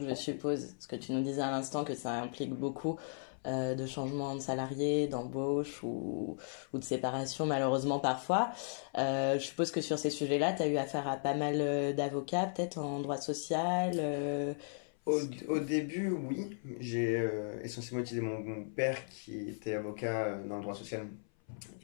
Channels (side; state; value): right; silent; 54 dB below the other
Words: je suppose, ce que tu nous disais à l'instant, que ça implique beaucoup de changements de salariés, d'embauche ou de séparation, malheureusement parfois. Je suppose que sur ces sujets-là, tu as eu affaire à pas mal d'avocats, peut-être en droit social. Au début, oui. J'ai essentiellement utilisé mon père qui était avocat dans le droit social